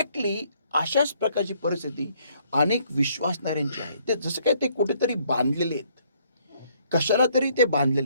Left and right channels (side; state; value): both; inverted; correlation -0.66